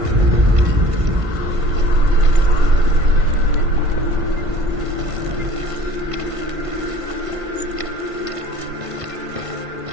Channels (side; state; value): left; late; 1.5 ms